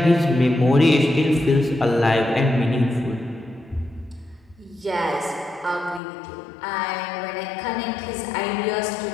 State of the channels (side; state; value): right; drops out; at 6.0 s